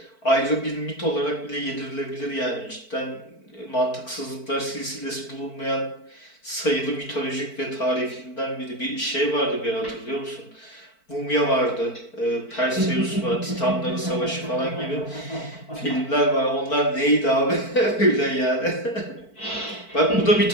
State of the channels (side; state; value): right; late; 4.5 ms